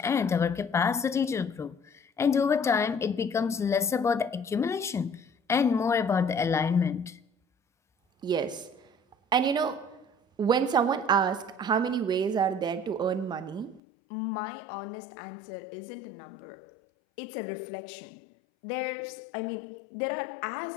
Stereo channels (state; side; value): drops out; right; at 13.8 s